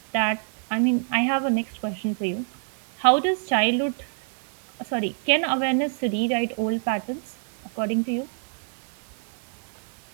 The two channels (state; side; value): silent; left; 61 dB below the other